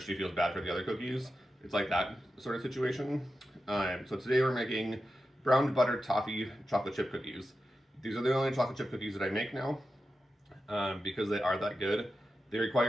she feels bad for the other cookies. It's like that sort of situation. So today we're making brown butter toffee chocolate chip cookies. These are the only chocolate chip cookies that I make now because they are that good. They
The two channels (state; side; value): normal; both; correlation 0.91